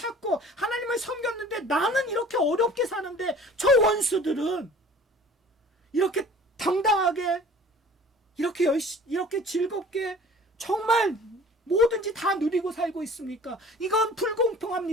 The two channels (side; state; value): both; normal; correlation 0.47